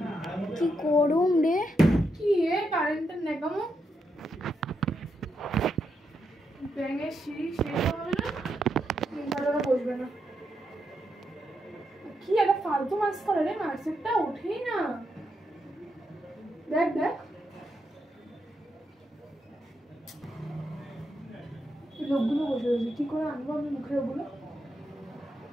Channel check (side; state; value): both; normal; correlation 0.82